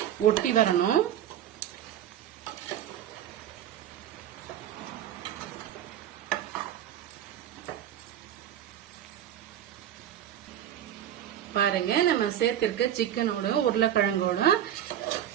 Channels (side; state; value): left; quieter; 11.0 dB